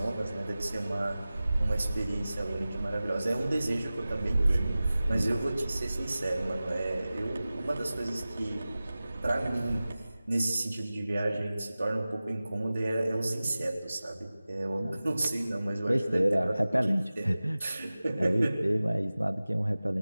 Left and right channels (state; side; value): inverted; both; correlation -0.97